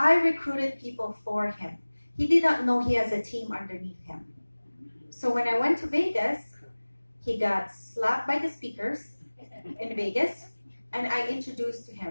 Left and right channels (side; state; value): both; inverted; correlation -1.00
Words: recruited people for him. He did not know he has a team underneath him. So when I went to Vegas, he got slapped by the speakers in Vegas, and I introduced to